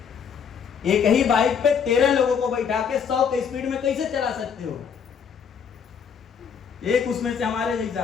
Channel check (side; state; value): right; quieter; 7.0 dB